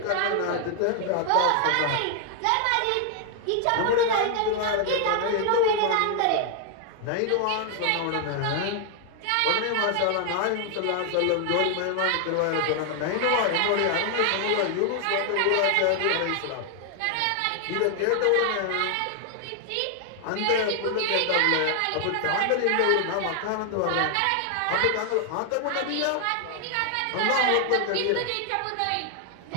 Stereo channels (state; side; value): different; both; correlation 0.00